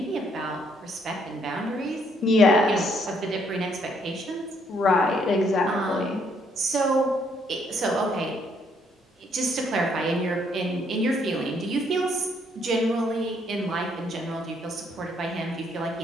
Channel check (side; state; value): both; normal; correlation 0.69